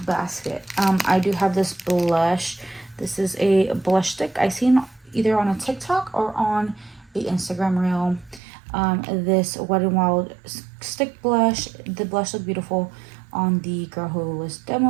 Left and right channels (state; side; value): drops out; left; at 8.4 s